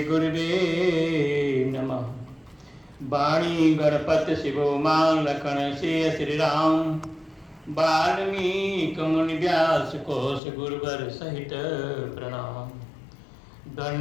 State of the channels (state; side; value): drops out; right; at 10.4 s